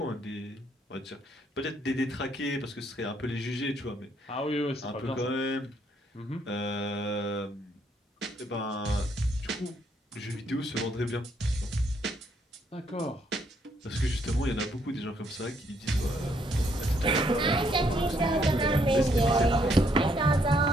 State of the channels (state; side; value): normal; both; correlation 0.71